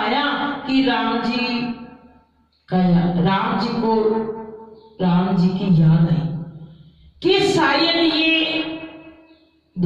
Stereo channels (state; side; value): identical; both; correlation 1.00